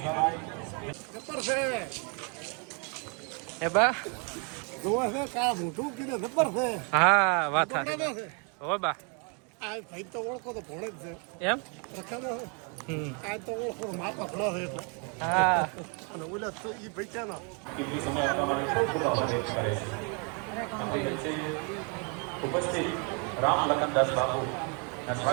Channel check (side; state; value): left; quieter; 36.3 dB